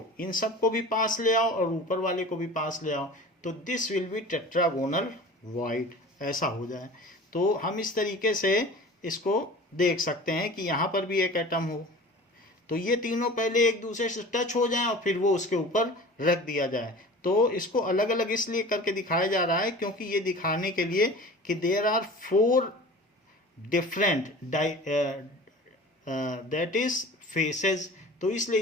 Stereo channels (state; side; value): normal; both; correlation 0.40